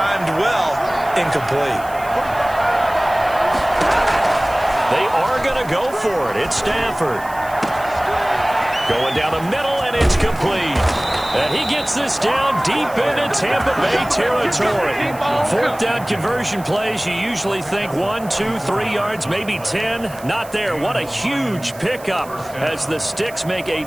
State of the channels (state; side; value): noise; right; hiss, 20 dB below the sound